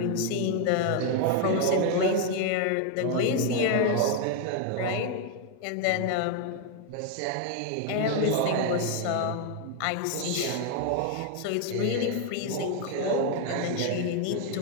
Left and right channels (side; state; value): both; different; correlation 0.01